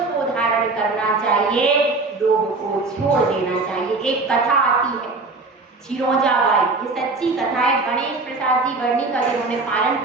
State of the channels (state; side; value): quieter; left; 3.6 dB